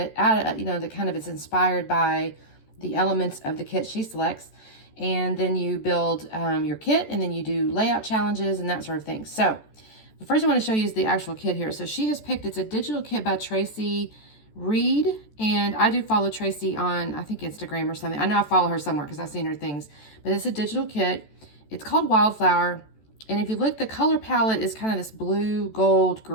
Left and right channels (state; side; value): late; right; 14 ms